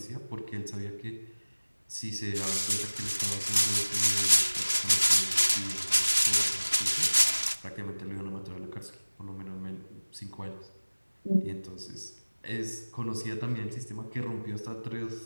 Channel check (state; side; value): inverted; both; correlation -1.00